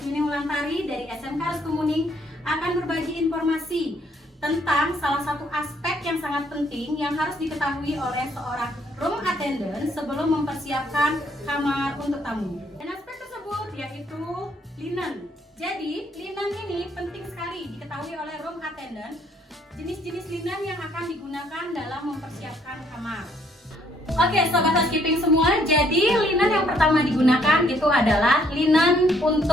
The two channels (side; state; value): both; normal; correlation 0.67